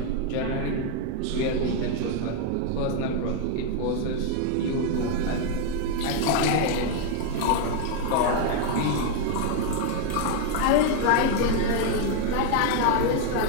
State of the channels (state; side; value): different; both; correlation 0.01